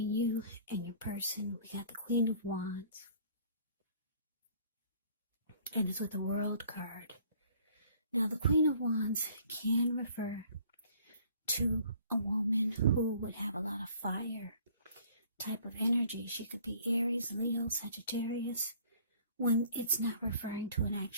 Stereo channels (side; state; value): both; inverted; correlation -0.55